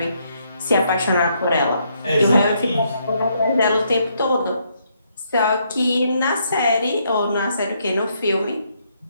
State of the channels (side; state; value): both; inverted; correlation -0.73